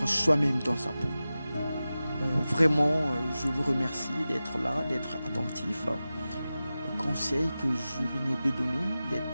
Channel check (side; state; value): both; inverted; correlation -0.95